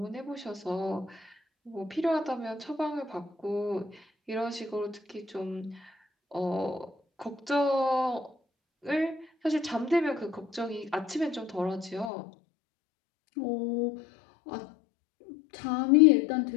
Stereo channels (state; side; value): drops out; right; at 12.1 s